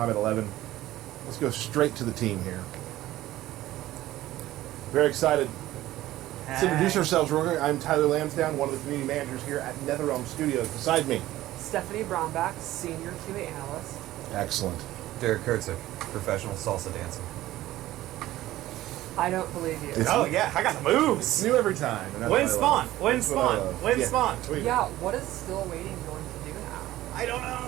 11. Let's go straight to the team here. Very excited. Let's introduce ourselves. I'm Tyler Lansdowne, one of the community managers here at NetherRealm Studios. Beside me, Stephanie Brownback, Senior QA Analyst. excellent. Derek Kurtzik, professional salsa dancer. I don't believe you. Oh yeah, I got the moves. It's new every time. Win Spawn. Yeah, what is still waiting going to do now? I don't know.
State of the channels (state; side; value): quieter; left; 15.4 dB